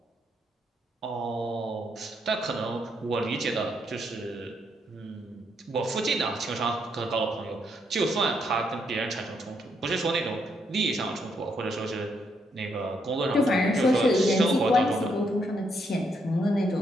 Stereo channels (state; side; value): normal; both; correlation 0.76